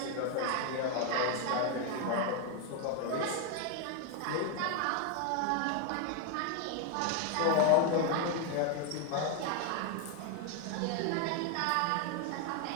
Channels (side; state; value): both; different; correlation 0.01